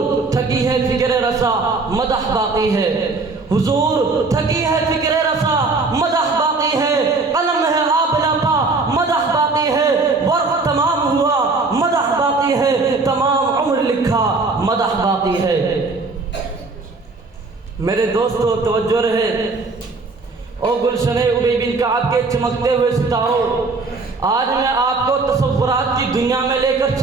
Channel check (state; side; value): quieter; left; 3.8 dB